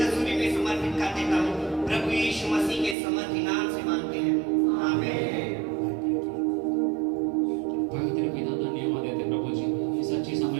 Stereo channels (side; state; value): left; drops out; at 3.0 s